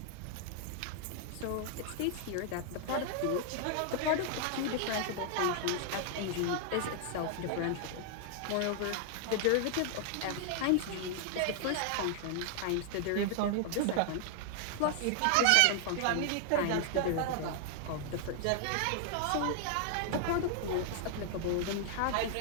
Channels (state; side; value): different; both; correlation 0.00